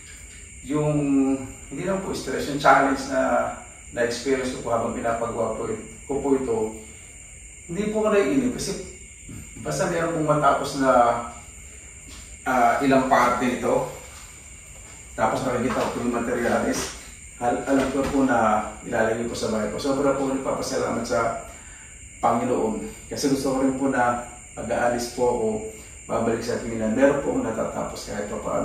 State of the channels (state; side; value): identical; both; correlation 1.00